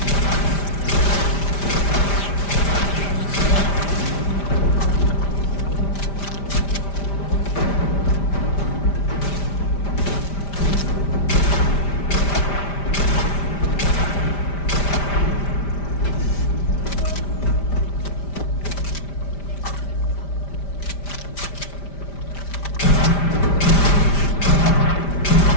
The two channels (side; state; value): right; late; 5.1 ms